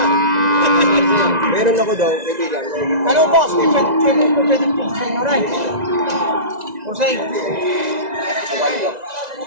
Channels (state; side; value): late; left; 1.9 ms